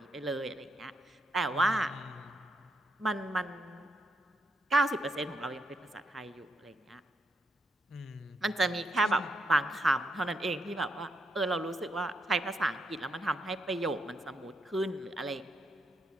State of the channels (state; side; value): normal; both; correlation 0.78